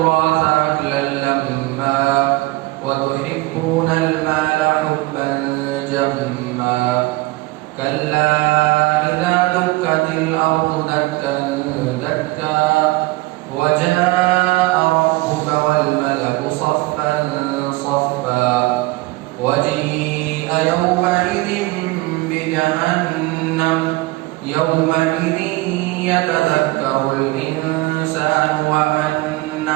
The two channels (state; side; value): quieter; left; 20.9 dB